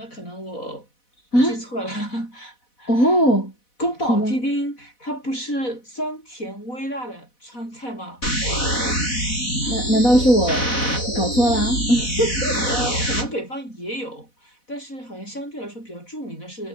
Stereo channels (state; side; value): late; right; 4.1 ms